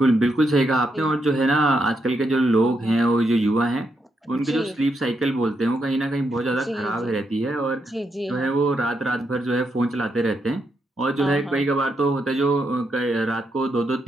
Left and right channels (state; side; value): normal; both; correlation 0.81